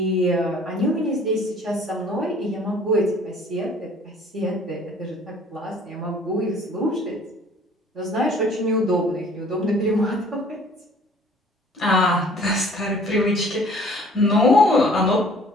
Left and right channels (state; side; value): normal; both; correlation 0.53